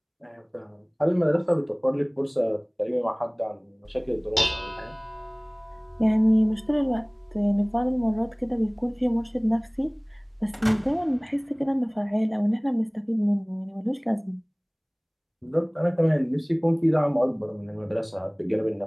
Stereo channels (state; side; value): identical; both; correlation 1.00